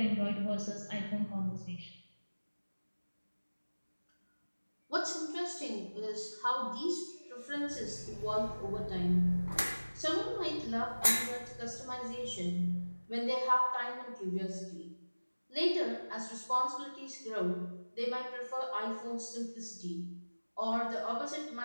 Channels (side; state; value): both; inverted; correlation -1.00